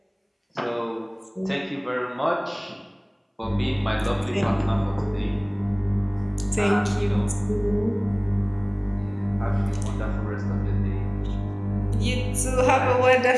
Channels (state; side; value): identical; both; correlation 1.00